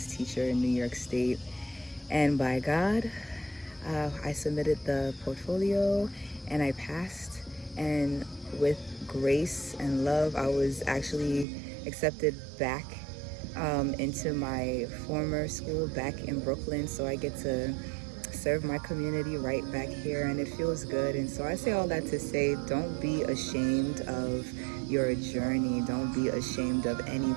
teacher in New York State. And by God, I submitted the portfolio and I passed. And with grace and love, I was actually accepted back into my former school back in Brooklyn. So I get to serve my community right back here, and it feels good. And so I say all that to say, don't be ashamed of your journey. Don't be ashamed of any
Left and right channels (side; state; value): left; drops out; at 11.5 s